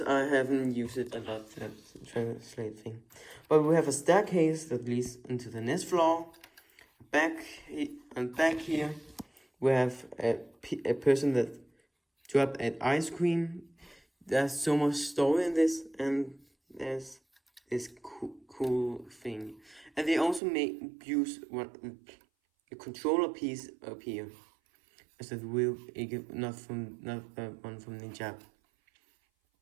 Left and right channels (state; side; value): drops out; left; at 20.4 s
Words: I haven't used it a lot, that translate thing. But we have a staircase that leads into the next floor. Back here, we have a person that dropped an ice cream. There's so much story in this, and there's this cool thing. And they also use a controller piece up here as a wheel, not one from Ninjago.